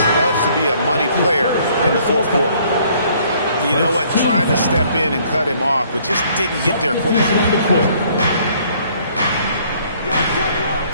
loves to be a money player in the fourth quarter. You know what? Tried to step in and cut him off, but just didn't get there quick enough.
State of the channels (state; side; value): inverted; both; correlation -0.62